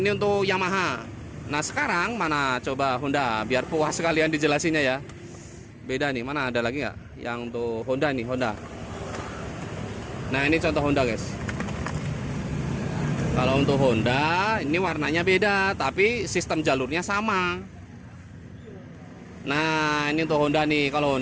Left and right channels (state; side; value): identical; both; correlation 1.00